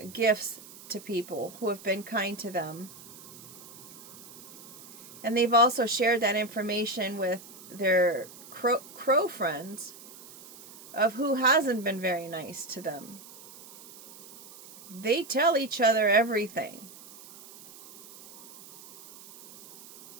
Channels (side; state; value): right; noise; hiss, 19 dB below the sound